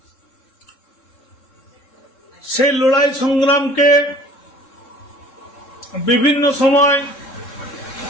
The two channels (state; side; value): late; right; 3.7 ms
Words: সেই লড়াই সংগ্রামকে বিভিন্ন সময়